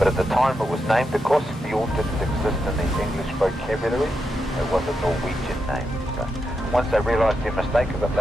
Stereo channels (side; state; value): both; normal; correlation 0.85